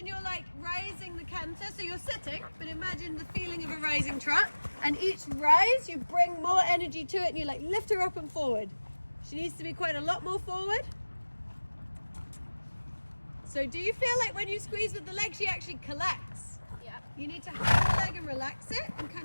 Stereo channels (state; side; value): inverted; both; correlation -1.00